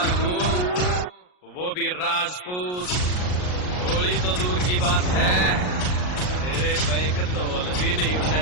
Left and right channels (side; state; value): right; late; 39 ms